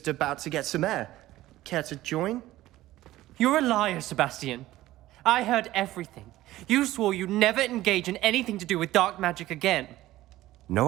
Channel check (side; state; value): left; quieter; 15.8 dB